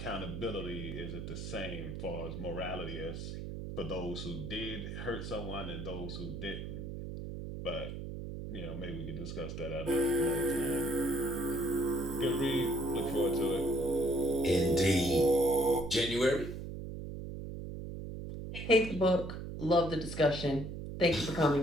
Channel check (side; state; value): right; noise; hum, 7 dB below the sound